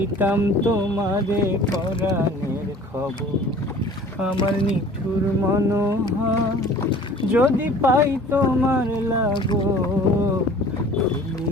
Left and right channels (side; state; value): both; normal; correlation 0.47